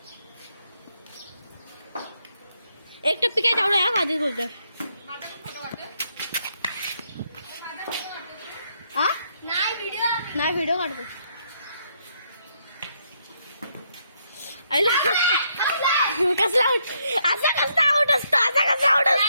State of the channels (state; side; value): inverted; both; correlation -0.75